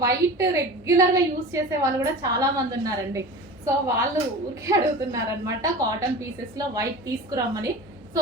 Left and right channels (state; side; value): normal; both; correlation 0.34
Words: వైట్ రెగ్యులర్ గా యూస్ చేసే వాళ్ళు కూడా చాలా మంది ఉన్నారండి. సో వాళ్ళు ఊరికే అడుగుతున్నారు అనమాట కాటన్ పీసెస్ లో వైట్ తీసుకురమ్మని. సో